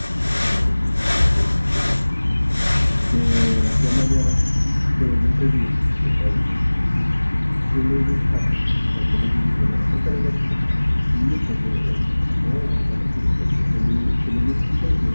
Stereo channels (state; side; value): inverted; both; correlation -1.00